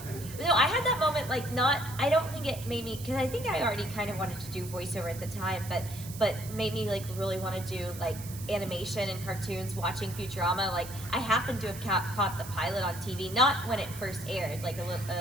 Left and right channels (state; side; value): noise; right; hiss, 13 dB below the sound